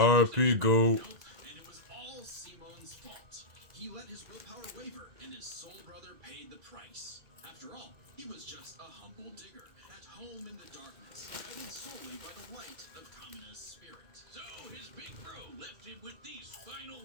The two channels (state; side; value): late; left; 1.9 ms